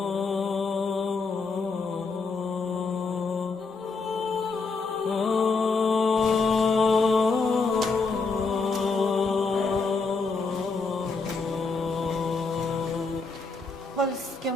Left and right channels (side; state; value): right; quieter; 4.2 dB